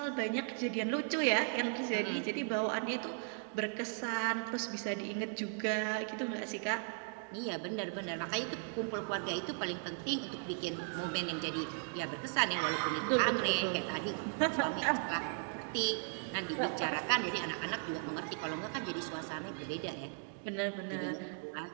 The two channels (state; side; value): silent; left; 53 dB below the other